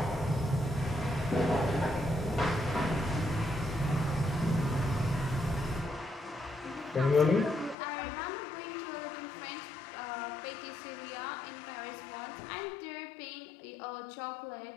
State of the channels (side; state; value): right; drops out; at 7.8 s